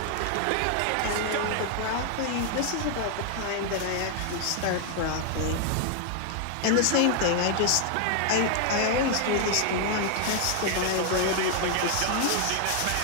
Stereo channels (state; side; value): different; both; correlation 0.00